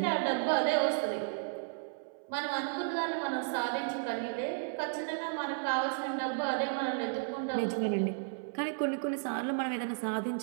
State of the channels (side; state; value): left; silent; 55 dB below the other